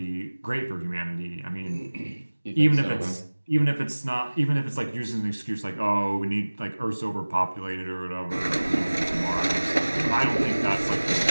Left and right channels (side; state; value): both; inverted; correlation -1.00